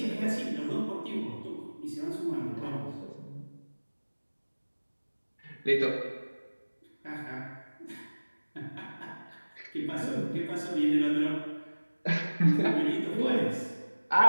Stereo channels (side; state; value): both; inverted; correlation -1.00